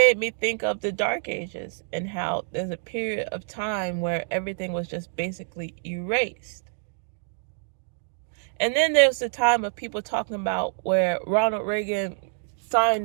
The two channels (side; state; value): left; silent; 61 dB below the other